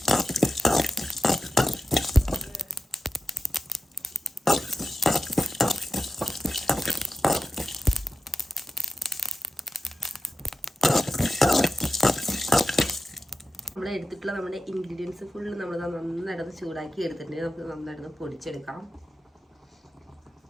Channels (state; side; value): normal; both; correlation 0.91